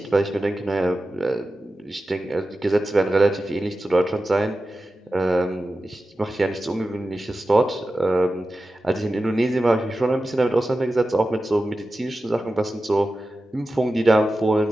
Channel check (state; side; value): normal; both; correlation 0.93